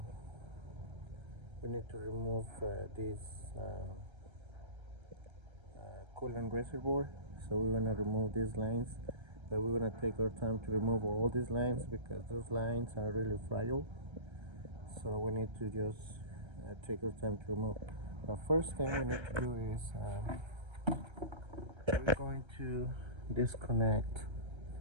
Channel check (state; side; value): late; left; 1.3 ms